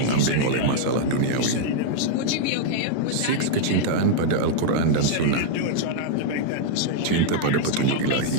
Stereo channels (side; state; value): both; different; correlation 0.00